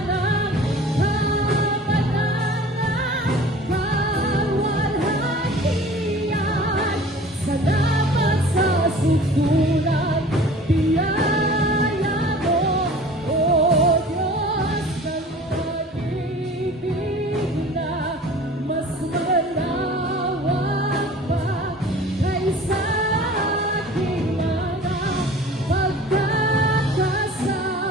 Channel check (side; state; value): both; normal; correlation 0.44